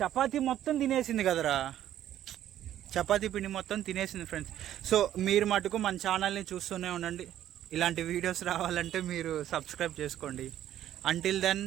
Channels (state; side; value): quieter; left; 11.8 dB